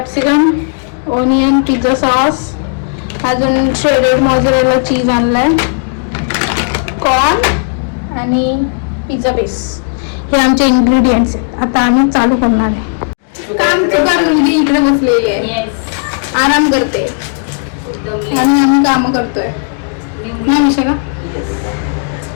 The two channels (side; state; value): right; silent; digital silence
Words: onion, pizza sauce, अजून श्रेडेड मोझरेला चीज आणलाय, कॉर्न आणि पिझ्झा बेस. हे आमचे इंग्रेडियंट्स आहेत. आता आम्ही चालू करणार आहे. काम चुकार मुलगी इकडे बसलेली आहे, आराम करते आणि आम्ही काम करतोय ना विशाखा.